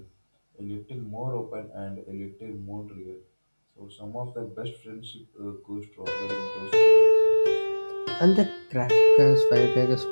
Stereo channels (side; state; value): both; inverted; correlation -1.00